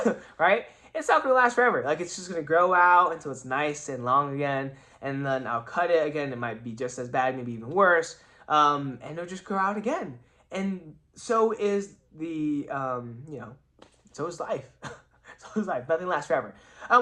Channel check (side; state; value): both; identical; correlation 1.00